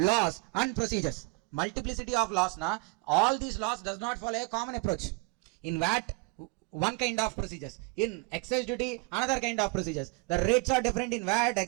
and procedures. Multiplicity of laws, all these laws does not follow a common approach. In VAT, one kind of procedures. In excise duty, another kind of procedures. The rates are different in VAT,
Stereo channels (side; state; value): left; quieter; 28.2 dB